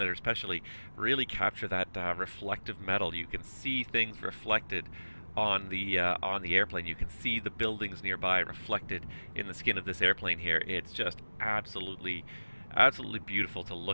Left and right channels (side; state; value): both; inverted; correlation -1.00